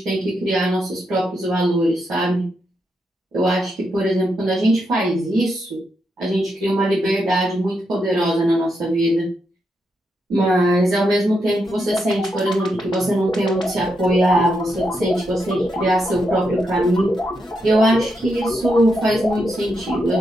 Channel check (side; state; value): both; normal; correlation 0.82